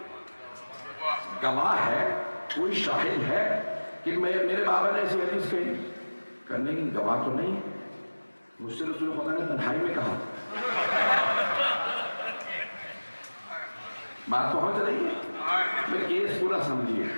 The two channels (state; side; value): inverted; both; correlation -1.00